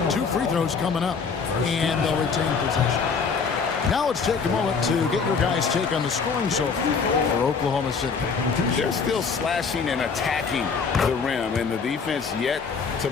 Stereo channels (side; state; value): right; quieter; 5.4 dB